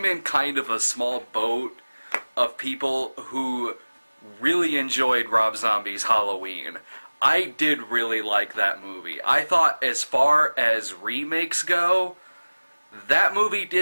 in kind of a small boat of people who really enjoyed Rob Zombie's Halloween. I did really like that movie. I thought as far as remakes go, that movie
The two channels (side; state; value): both; inverted; correlation -1.00